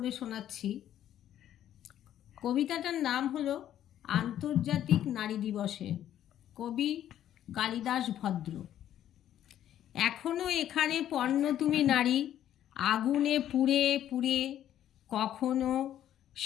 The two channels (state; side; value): quieter; right; 11.3 dB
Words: শোনাচ্ছি। কবিতাটার নাম হলো আন্তর্জাতিক নারী দিবসে, কবি কালিদাস ভদ্র। এখনো এখানে পণ্য তুমি নারী, আগুনে পুড়ে পুড়ে কখনো